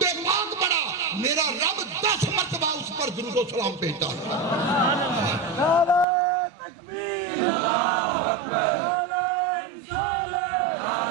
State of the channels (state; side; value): drops out; left; at 6.1 s